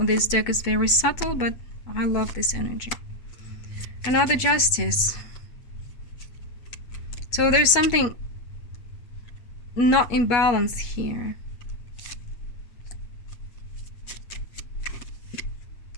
deck is very subtle, but I love this energy. Another Justice. So there's something not in balance here.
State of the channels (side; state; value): right; late; 8.3 ms